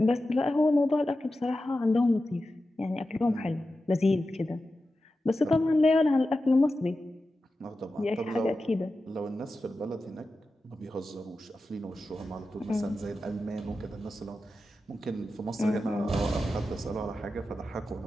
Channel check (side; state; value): both; normal; correlation 0.92